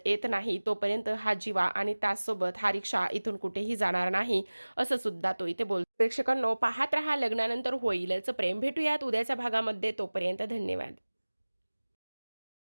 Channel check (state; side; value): inverted; both; correlation -1.00